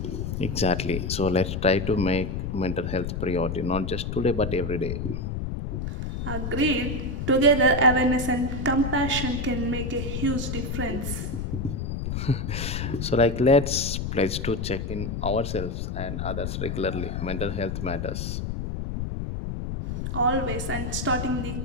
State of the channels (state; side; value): noise; left; rumble, 3 dB below the sound